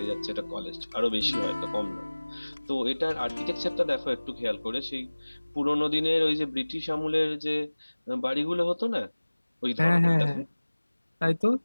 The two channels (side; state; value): both; inverted; correlation -1.00